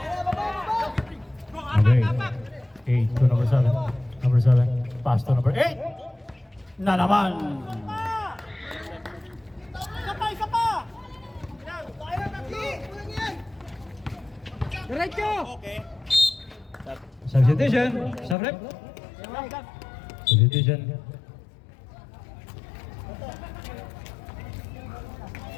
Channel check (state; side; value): drops out; right; at 18.4 s